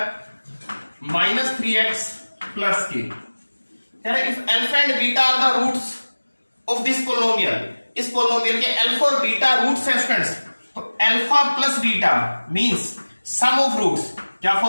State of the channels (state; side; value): inverted; both; correlation -1.00